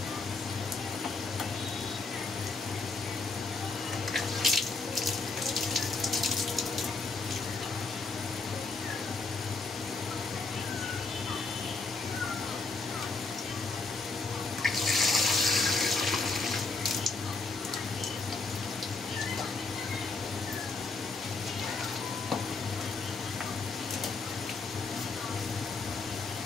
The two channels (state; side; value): quieter; right; 3.9 dB